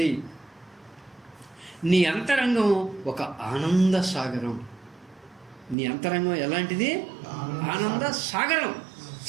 నీ అంతరంగం ఒక ఆనంద సాగరం. నీ అంతరంగం ఎలాంటిది? ఆనంద సాగరం,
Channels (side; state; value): left; drops out; at 5.8 s